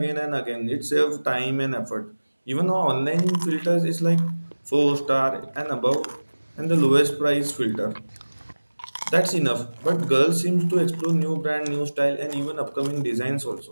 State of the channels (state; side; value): inverted; both; correlation -1.00